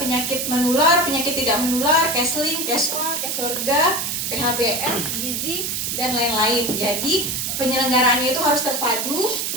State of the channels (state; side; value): noise; right; hiss, 2 dB below the sound